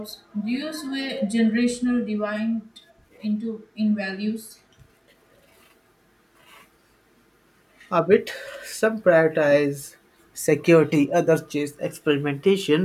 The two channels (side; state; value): both; identical; correlation 1.00